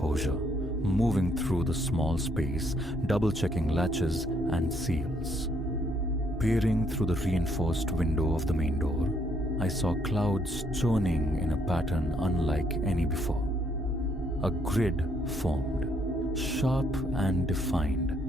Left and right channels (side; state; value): both; normal; correlation 0.70